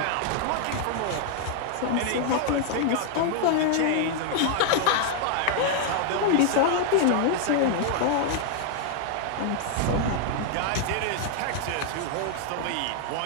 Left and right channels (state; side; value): different; both; correlation 0.00